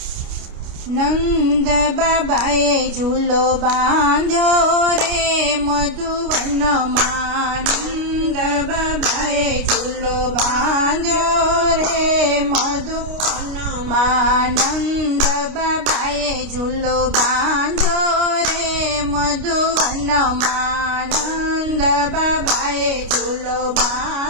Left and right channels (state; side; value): late; left; 29 ms